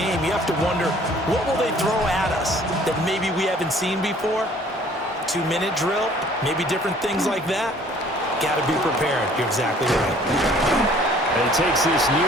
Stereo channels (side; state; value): both; normal; correlation 0.55